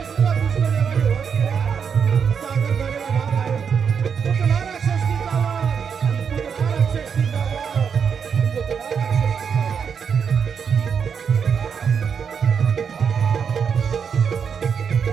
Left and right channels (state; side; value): quieter; left; 6.8 dB